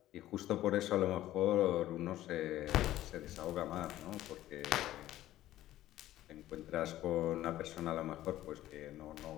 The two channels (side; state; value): right; quieter; 14.2 dB